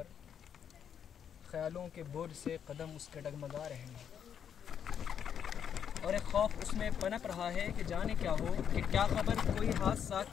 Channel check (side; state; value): right; quieter; 8.3 dB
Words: ख्यालों के बोझ से कदम उसके डगमगा रहे हैं। और एक खौफ उसमें पनप रहा है कि जाने क्या हो, कि क्या खबर कोई हादसा